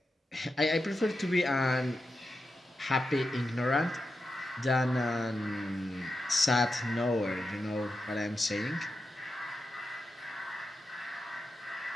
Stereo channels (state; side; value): normal; both; correlation 0.89